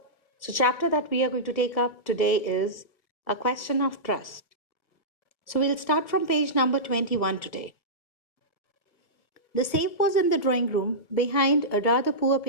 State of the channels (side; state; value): right; late; 1.5 ms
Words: So, chapter that we are going to take up today is A Question of Trust. So, we'll start from page number 21 today. The safe was in the drawing room behind a rather poor